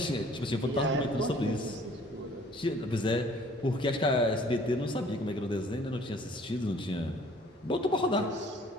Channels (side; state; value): both; normal; correlation 0.55